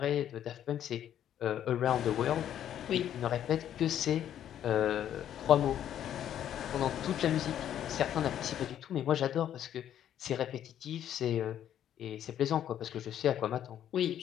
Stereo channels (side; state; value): right; quieter; 10.5 dB